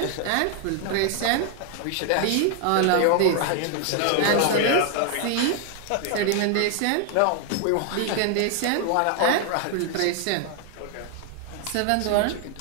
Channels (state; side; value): different; both; correlation 0.00